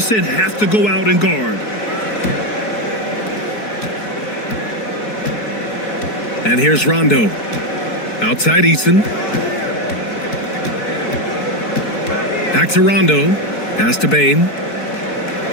have to go out and guard. And here's Rondo. Outside Eason. Back to Rondo. Pass to Bane.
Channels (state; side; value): late; right; 4.6 ms